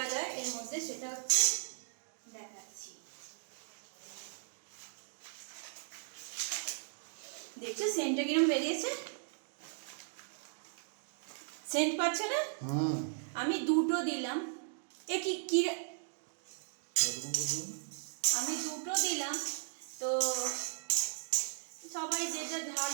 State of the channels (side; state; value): left; silent; digital silence